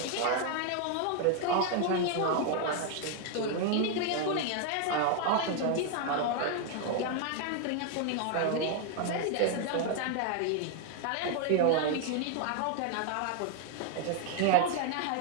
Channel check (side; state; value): both; different; correlation 0.00